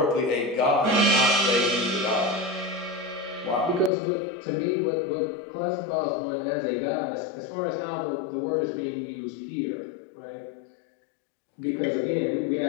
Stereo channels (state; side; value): drops out; right; at 3.9 s